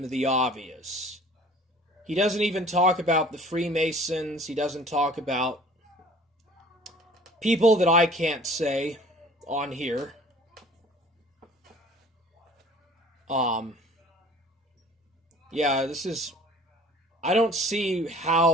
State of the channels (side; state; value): both; normal; correlation 0.50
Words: the obvious. He doesn't even talk about the Freemasons. He doesn't talk about people that I can't say on here. Yeah, I don't see